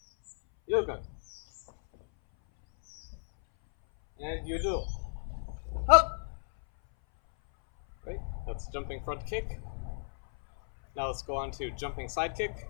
Yoga. And yudo. Up. Right? That's jumping front kick. Now let's go on to jumping side kick.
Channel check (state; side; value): silent; right; 56 dB below the other